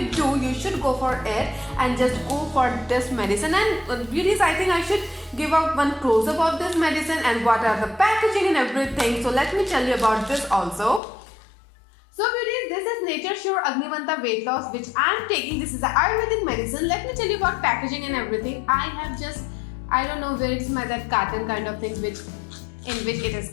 do, you should go for it and just go for this medicine. And beauties, I think I should give out one close-up of this medicine and what are the packaging and everything. So let me tell you about this also. So beauties, this is Nature Sure Agnimanta weight loss which I am taking. This is the Ayurvedic medicine. Let me tell you about packaging and everything. I don't know where it's that carton kind of things in which it has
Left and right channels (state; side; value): drops out; right; at 11.0 s